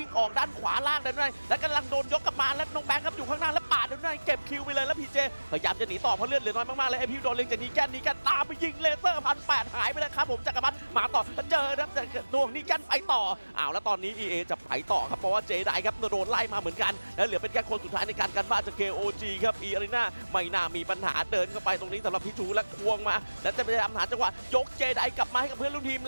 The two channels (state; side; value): inverted; both; correlation -1.00